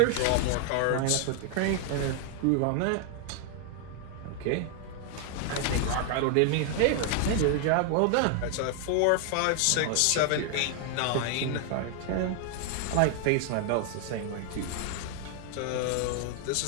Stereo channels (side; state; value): both; different; correlation 0.00